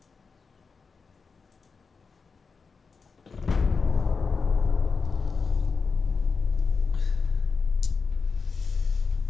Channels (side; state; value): right; quieter; 5.0 dB